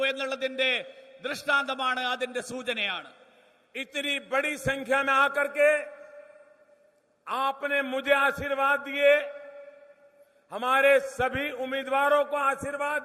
എന്നുള്ളതിന്റെ ദൃഷ്ടാന്തമാണ്, അതിന്റെ സൂചനയാണ്. इतनी बड़ी संख्या में आकर के आपने मुझे आशीर्वाद दिए, हमारे सभी उम्मीदवारों को आशीर्वाद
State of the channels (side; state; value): both; identical; correlation 1.00